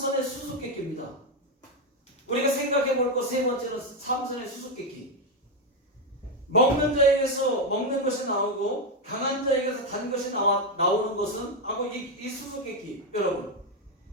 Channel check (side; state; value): both; normal; correlation 0.06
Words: 수수께끼입니다. 우리가 생각해 볼 것 세 번째는 삼선의 수수께끼. 먹는 자에게서 먹는 것이 나오고 강한 자에게서 단 것이 나오는 것은 하고 이 수수께끼. 여러분